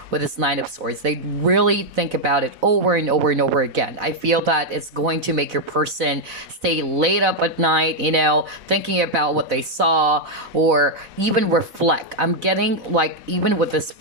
with this Nine of Swords. They really think about it over and over and over again. I feel that it's going to make your person stay late up at night, thinking about what they saw or even reflect. I'm getting like, even with this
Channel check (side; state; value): left; late; 4.0 ms